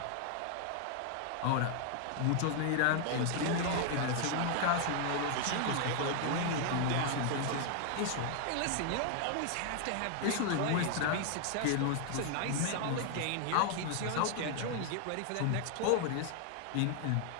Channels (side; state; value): both; different; correlation 0.00